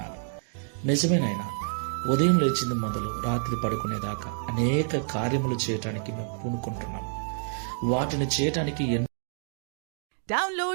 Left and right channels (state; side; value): silent; left; 58 dB below the other